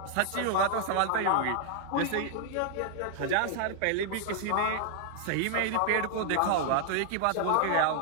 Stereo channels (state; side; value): different; both; correlation 0.00